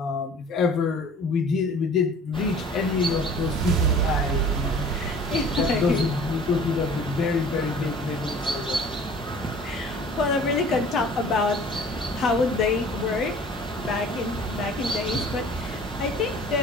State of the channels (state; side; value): normal; both; correlation 0.48